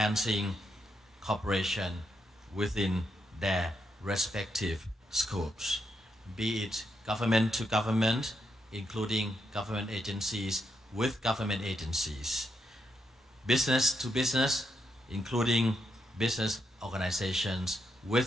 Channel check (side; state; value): both; normal; correlation 0.81